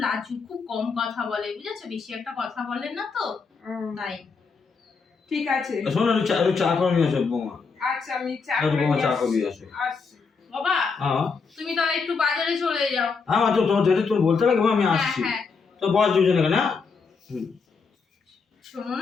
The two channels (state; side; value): quieter; right; 5.0 dB